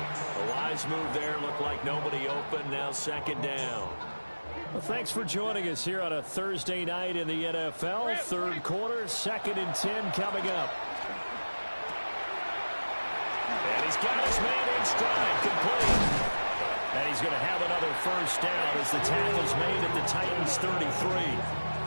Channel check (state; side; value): inverted; both; correlation -1.00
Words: A wise move there. Looked like nobody open. Now 2nd down. Well, thanks for joining us here on a Thursday night in the NFL. 3rd quarter, 2nd and 10 coming up. And he's got his man in stride, complete. And he's going to have another first down as the tackle's made at the Titans' 33.